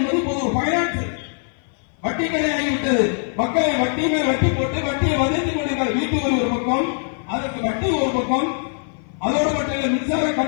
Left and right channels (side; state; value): right; silent; 57 dB below the other